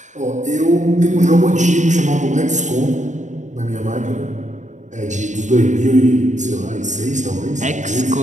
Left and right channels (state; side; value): late; left; 0.35 ms